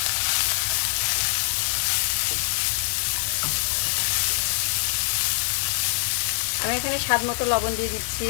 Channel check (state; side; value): silent; right; digital silence